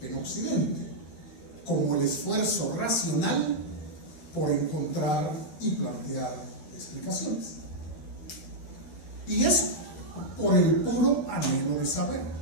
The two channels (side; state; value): right; late; 12 ms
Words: en Occidente, como el esfuerzo racional por encontrar y plantear explicaciones. Y eso por el puro anhelo de saber,